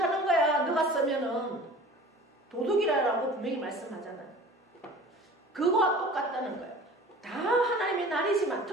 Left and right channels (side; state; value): both; normal; correlation 0.43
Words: 거야. 너가 쓰면은 도둑이라고 분명히 말씀하잖아요. 그거와 똑같다는 거예요. 다 하나님의 날이지만